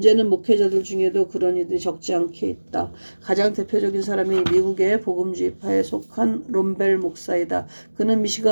목회자들 중에도 그런 이들이 적지 않게 있다. 가장 대표적인 사람이 미국의 복음주의파에 속한 롬벨 목사이다. 그는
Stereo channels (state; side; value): inverted; both; correlation -1.00